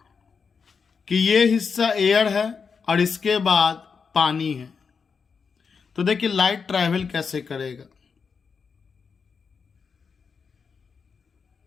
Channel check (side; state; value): right; quieter; 5.7 dB